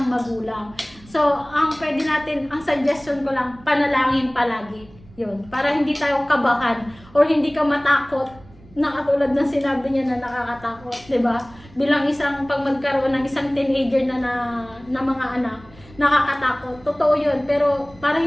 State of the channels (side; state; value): right; noise; rumble, 23 dB below the sound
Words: magulang. So, ang pwede natin, ang suggestion ko lang, panalangin palagi. Yun, para hindi tayo kabahan or hindi ka matakot na katulad ng sinabi niya na nakakatakot, 'di ba? Bilang isang pag magkaroon ng isang teenager na mga anak, nakakatakot. Totoo 'yun, pero para